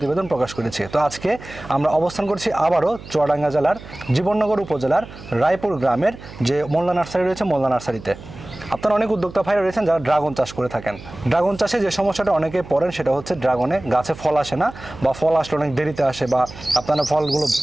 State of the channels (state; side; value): noise; right; hum, 16 dB below the sound